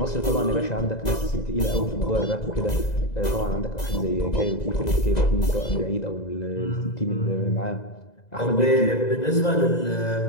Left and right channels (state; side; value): late; right; 2.0 ms